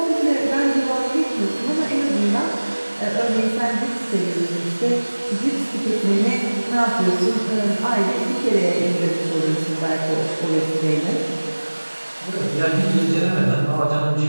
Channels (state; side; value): inverted; both; correlation -1.00